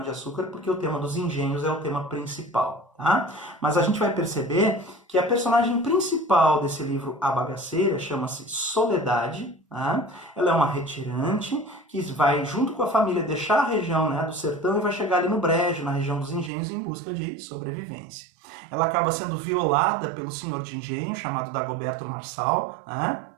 porque o tema dos engenhos é o tema principal, tá? Mas a gente vai perceber que a personagem principal desse livro A Bagaceira chama-se Soledade, tá? Ela é uma retirante que vai, junto com a família, deixar a região, né, do sertão e vai chegar ali no Brejo, na região dos engenhos, em busca de sobrevivência. Ela acaba sendo violada pelo senhor de engenho, chamado Dagoberto Marçal, né?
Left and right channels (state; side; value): drops out; left; at 16.5 s